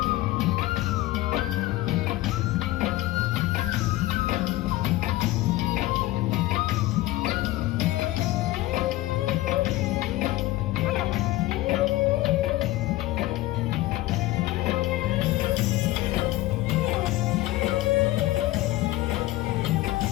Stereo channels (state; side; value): quieter; right; 17.4 dB